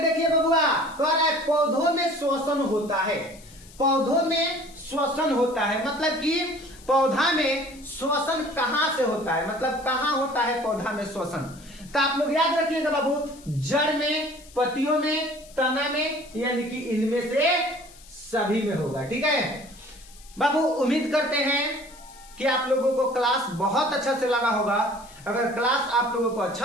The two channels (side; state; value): left; noise; hiss, 22 dB below the sound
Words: बबुआ, कह रहा है पौधों में श्वसन होता है। पौधों में श्वसन होता है मतलब कि पौधा में श्वसन कहां से होता है, मतलब कहां होता है पौधा में श्वसन। तो आप लोग याद रखिएगा बाबू, जड़ में, पत्तियों में, तना में, यानी कि इनमें से सभी में होगा। ठीक है बाबू, उम्मीद करते हैं कि आप लोगों को क्लास बहुत अच्छा से लगा होगा। अगर क्लास आप लोगों को